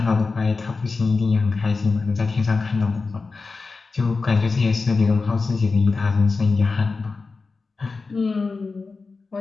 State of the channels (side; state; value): right; quieter; 4.2 dB